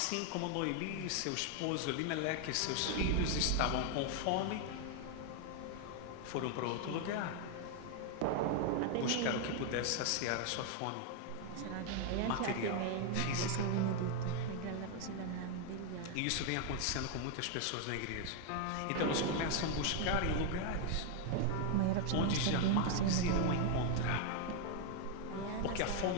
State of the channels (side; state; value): both; different; correlation 0.00